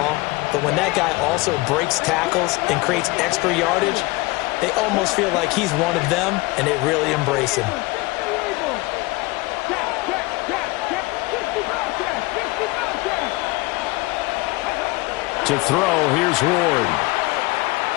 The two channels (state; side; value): quieter; right; 22.7 dB